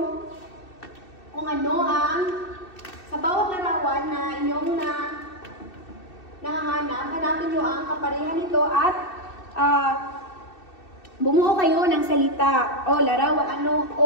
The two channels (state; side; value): late; right; 2.6 ms